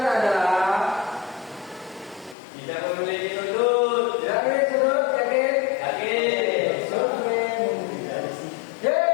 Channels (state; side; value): drops out; right; at 2.4 s